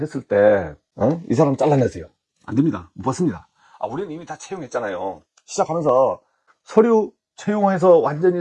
때 이 사람 잘라내세요. 안 됩니다. 못 받습니다. 우리는 이미 다 채용했잖아요. 시작하면서 서류 채용해서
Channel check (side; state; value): both; identical; correlation 1.00